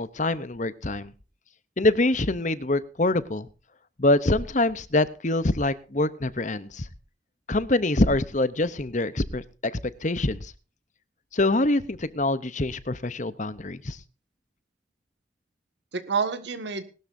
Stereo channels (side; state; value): both; normal; correlation 0.36